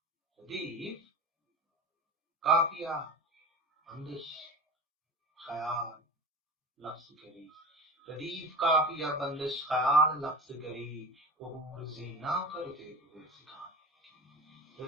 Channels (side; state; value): both; normal; correlation 0.32